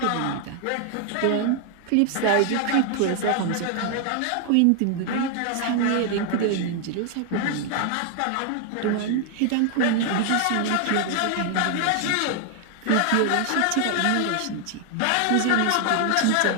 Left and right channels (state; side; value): different; both; correlation 0.00